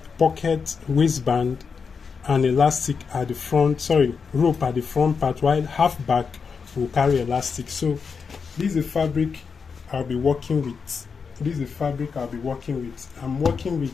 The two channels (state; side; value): quieter; right; 5.6 dB